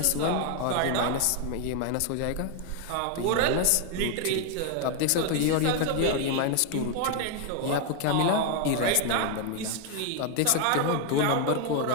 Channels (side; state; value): both; different; correlation 0.01